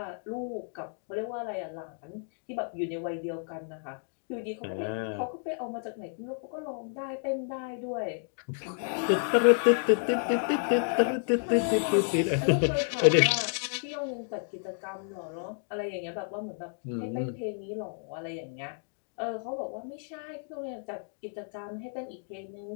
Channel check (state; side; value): silent; right; 57 dB below the other